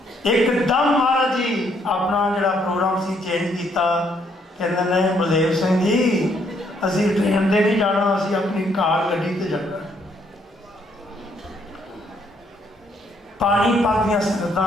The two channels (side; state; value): both; normal; correlation 0.70